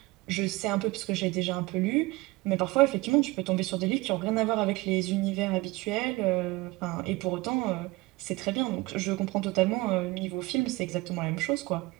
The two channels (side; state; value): left; quieter; 21.9 dB